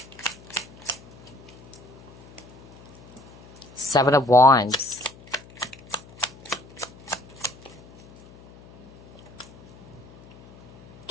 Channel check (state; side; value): noise; left; hum, 21 dB below the sound